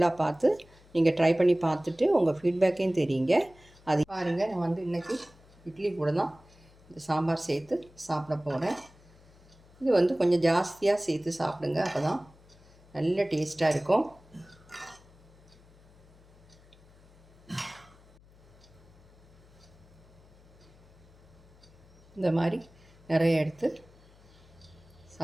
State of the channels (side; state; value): left; noise; hum, 26 dB below the sound